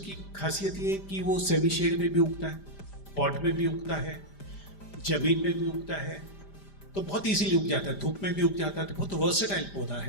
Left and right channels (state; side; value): late; right; 5.0 ms